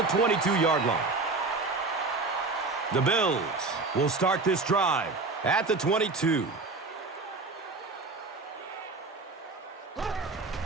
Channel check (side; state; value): left; quieter; 3.7 dB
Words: 22-yard line. The Bills will start this drive at the 22.